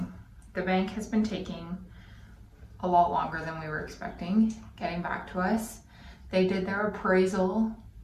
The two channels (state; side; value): identical; both; correlation 1.00